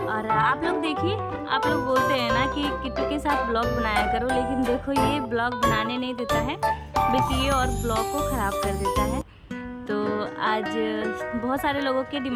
और आप लोग देखिए, आप लोग बोलते हैं ना कि किट्टू के साथ ब्लॉग बनाया करो, लेकिन देखो ये ब्लॉग बनाने नहीं देता है बल्कि ये और ब्लॉग को ख़राब कर देता है। तो आज बहुत सारे लोगों के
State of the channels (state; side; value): identical; both; correlation 1.00